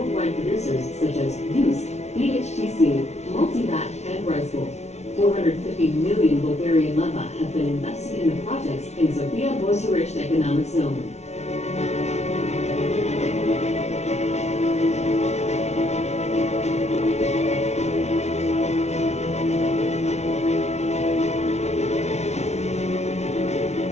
producers such as Yus, BHTC, Multivat, and Rice-Bowl. 450 million Bulgarian leva have been invested in the projects in Sofia Bucharest Economic Zone.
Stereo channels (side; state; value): right; late; 0.32 ms